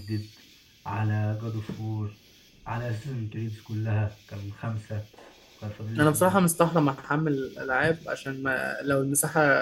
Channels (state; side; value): identical; both; correlation 1.00